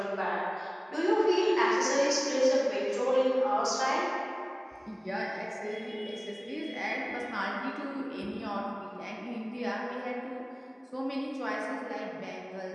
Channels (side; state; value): both; identical; correlation 1.00